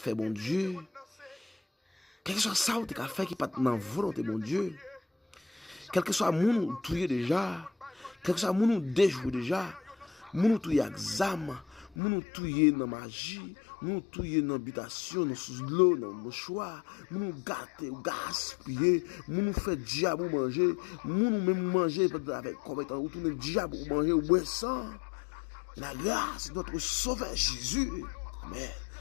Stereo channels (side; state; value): right; drops out; at 12.0 s